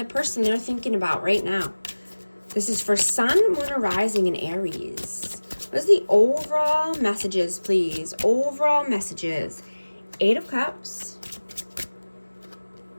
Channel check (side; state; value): both; inverted; correlation -1.00